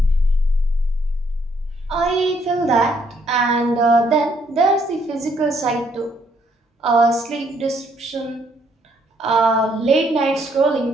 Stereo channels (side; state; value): both; normal; correlation 0.69